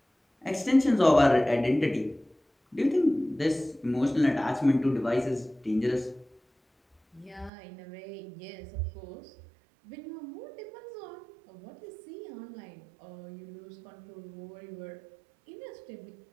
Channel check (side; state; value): left; drops out; at 7.5 s